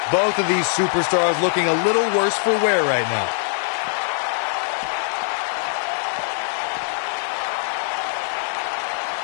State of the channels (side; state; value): right; silent; 64 dB below the other